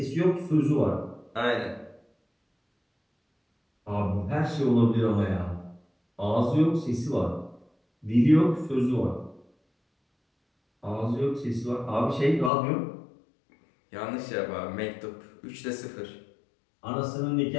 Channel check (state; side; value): drops out; right; at 12.5 s